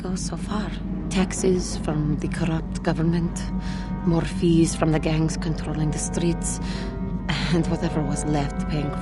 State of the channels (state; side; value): identical; both; correlation 1.00